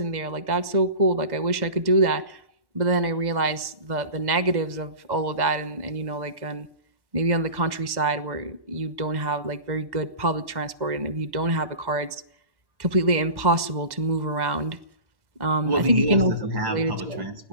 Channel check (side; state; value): left; late; 1.1 ms